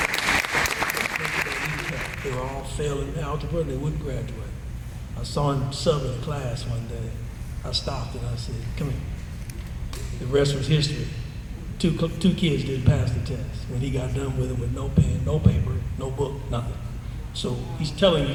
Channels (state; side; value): identical; both; correlation 1.00